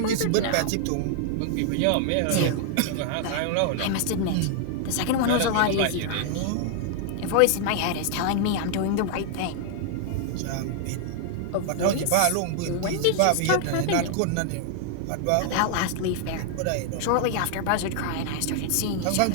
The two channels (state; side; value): different; both; correlation 0.00